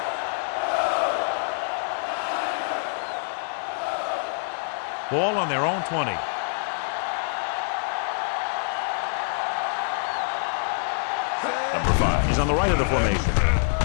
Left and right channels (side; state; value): right; silent; digital silence